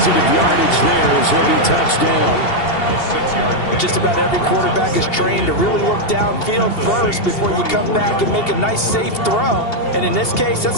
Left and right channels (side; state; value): right; late; 2.7 ms